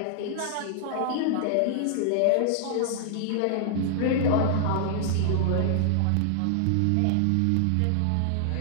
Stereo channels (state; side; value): different; both; correlation -0.01